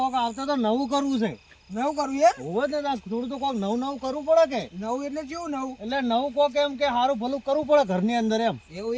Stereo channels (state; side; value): identical; both; correlation 1.00